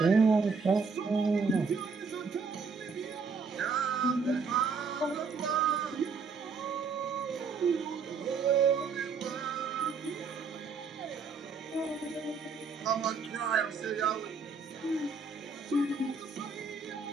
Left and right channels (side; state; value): left; quieter; 5.0 dB